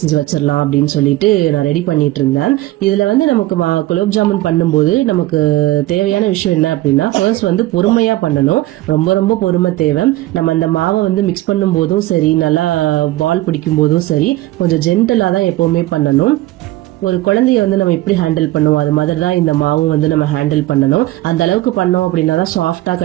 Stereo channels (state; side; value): quieter; left; 17.0 dB